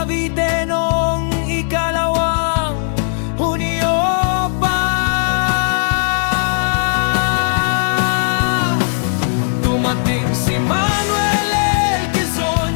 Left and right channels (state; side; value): silent; right; 68 dB below the other